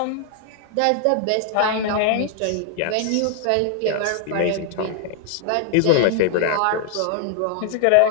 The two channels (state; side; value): different; both; correlation 0.00